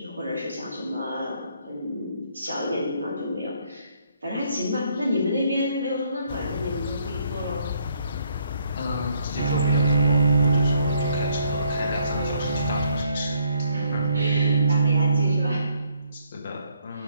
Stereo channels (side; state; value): both; inverted; correlation -0.69